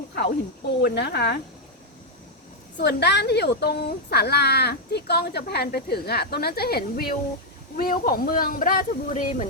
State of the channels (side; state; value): both; normal; correlation 0.00